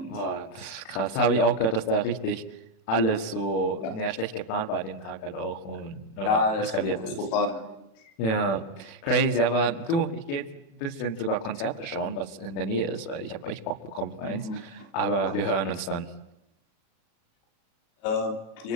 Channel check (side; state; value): right; late; 36 ms